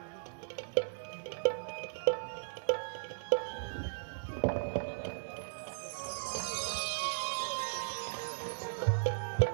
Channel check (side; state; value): left; silent; 53 dB below the other